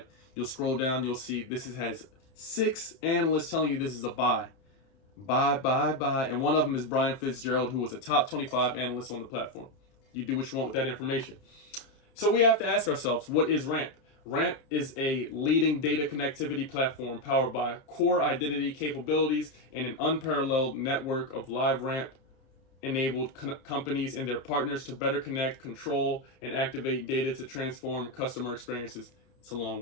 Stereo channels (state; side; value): late; right; 30 ms